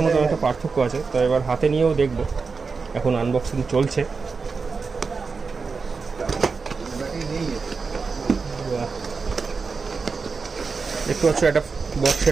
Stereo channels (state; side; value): quieter; left; 4.8 dB